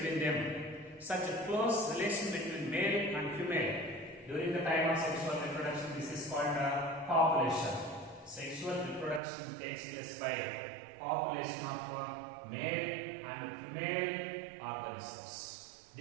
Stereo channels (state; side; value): drops out; left; at 9.2 s